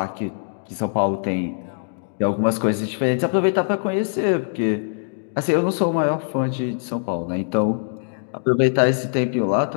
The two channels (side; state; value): right; silent; digital silence